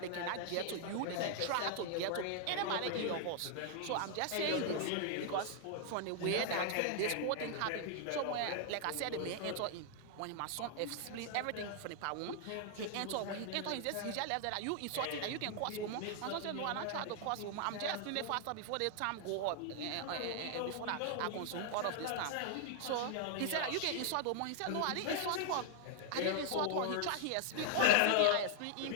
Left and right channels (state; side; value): different; both; correlation 0.00